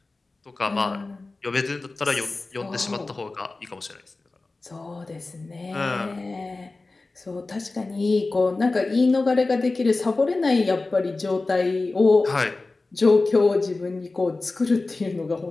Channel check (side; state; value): right; quieter; 3.4 dB